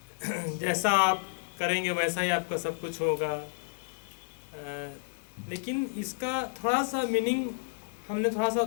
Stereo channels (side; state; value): right; silent; digital silence